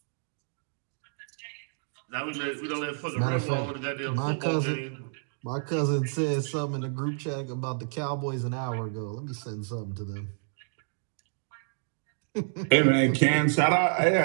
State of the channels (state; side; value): silent; left; digital silence